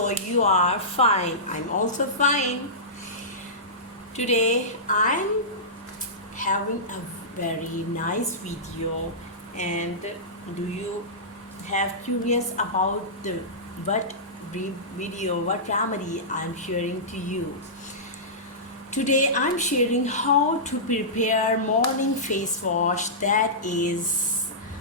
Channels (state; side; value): normal; both; correlation -0.17